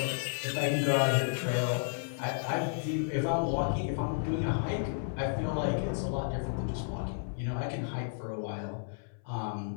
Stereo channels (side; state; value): right; silent; 56 dB below the other